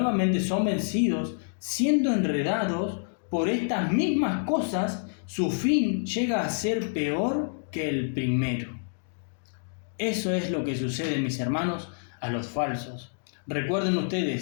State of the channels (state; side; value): silent; right; digital silence